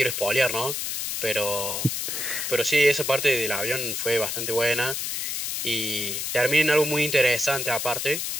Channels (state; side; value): noise; left; hiss, 2 dB below the sound